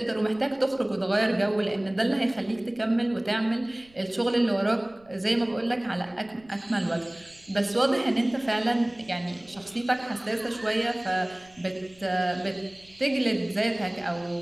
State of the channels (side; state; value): right; noise; rumble, 29 dB below the sound